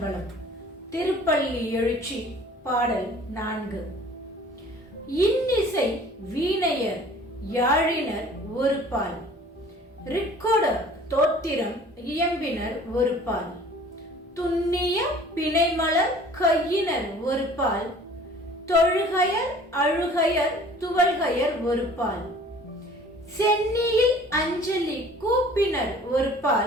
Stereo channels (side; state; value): both; normal; correlation 0.49